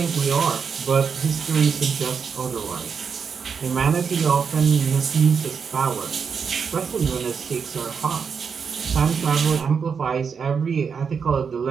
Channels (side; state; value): left; quieter; 6.2 dB